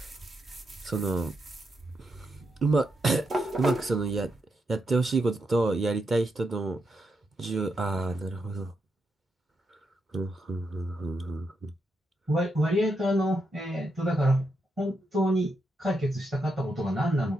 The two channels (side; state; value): both; normal; correlation 0.83